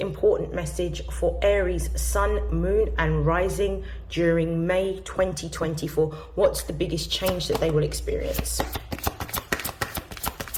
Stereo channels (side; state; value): both; identical; correlation 1.00